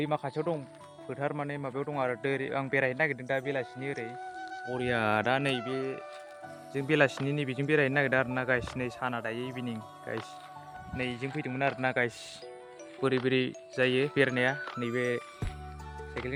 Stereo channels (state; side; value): identical; both; correlation 1.00